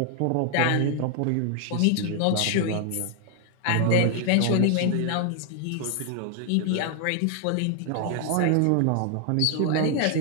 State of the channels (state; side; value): different; both; correlation 0.00